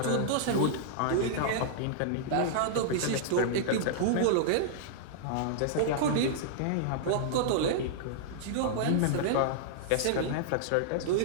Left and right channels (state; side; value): different; both; correlation -0.01